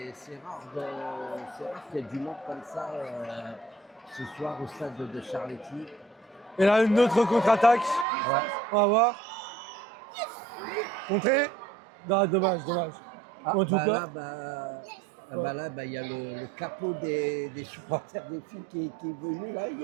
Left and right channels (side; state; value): left; drops out; at 8.1 s